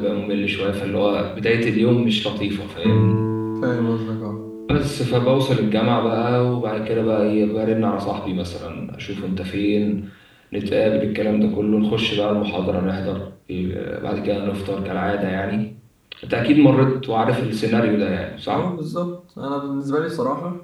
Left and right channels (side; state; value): both; identical; correlation 1.00